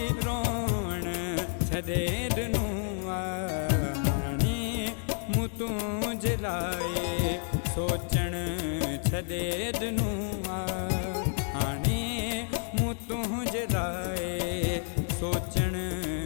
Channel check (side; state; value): right; silent; 58 dB below the other